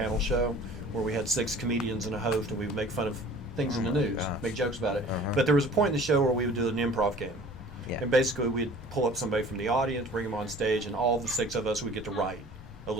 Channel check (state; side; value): normal; both; correlation 0.47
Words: show where we had 6 comedians and a host, and we would make fun of things in the news, gosh. make jokes about it. Uh-huh. But there was a point in the show where we would do an improv game. Yeah. And basically we'd pull up somebody from the audience, bring them on stage, and all the 6 of us would get to write a